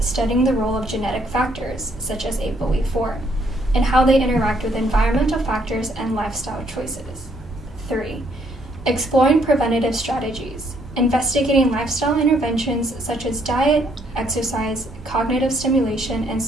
the role of genetic factors, such as ApoE4, and how they interact with environmental factors and lifestyle choices. 3. Exploring preventative strategies, investigating lifestyle interventions such as diet, exercise, cognitive stimulation, and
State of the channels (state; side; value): normal; both; correlation 0.69